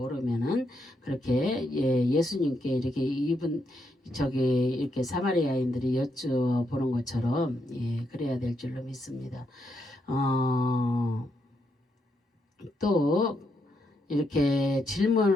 그렇게 예수님께 이렇게 이렇게 사마리아인들이 여쭤보는 것처럼 그래야 될 줄로 믿습니다. 또 이렇게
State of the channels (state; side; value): normal; both; correlation 0.79